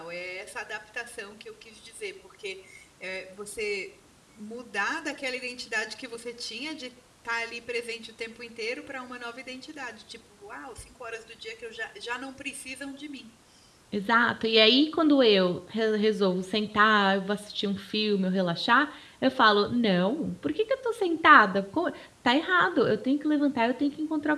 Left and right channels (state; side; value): identical; both; correlation 1.00